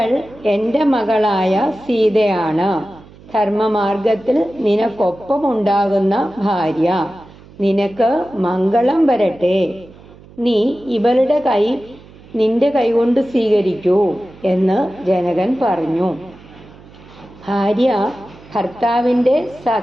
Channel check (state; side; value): noise; right; hum, 22 dB below the sound